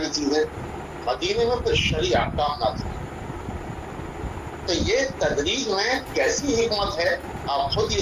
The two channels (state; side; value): identical; both; correlation 1.00